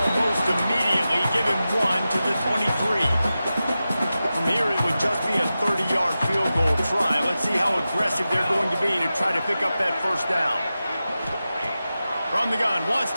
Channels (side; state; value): both; inverted; correlation -0.93